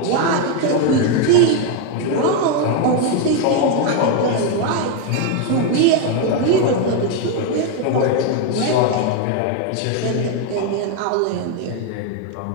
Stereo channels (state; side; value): different; both; correlation 0.01